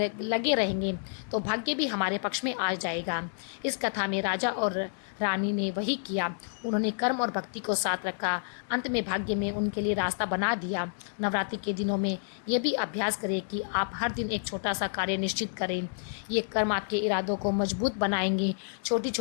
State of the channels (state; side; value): silent; right; digital silence